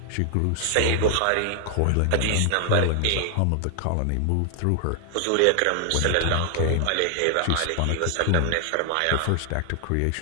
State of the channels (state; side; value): different; both; correlation 0.00